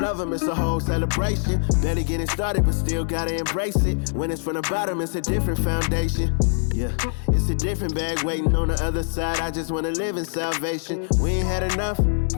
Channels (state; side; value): silent; right; digital silence